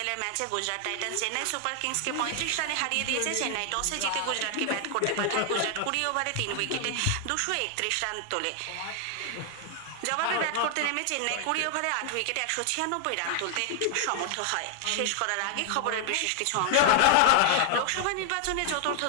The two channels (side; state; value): both; different; correlation 0.00